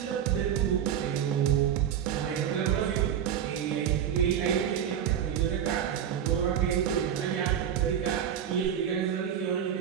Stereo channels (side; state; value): left; quieter; 9.3 dB